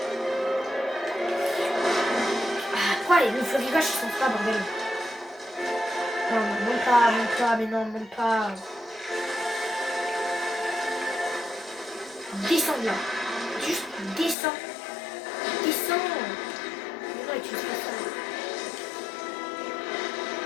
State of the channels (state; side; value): drops out; right; at 14.4 s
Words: Ah, pourquoi le florigage ils sont pas, bordel? Non, monte pas, mais non, monte pas. Descends là. Juste descends. Descends. Mais non, utilise pas ça.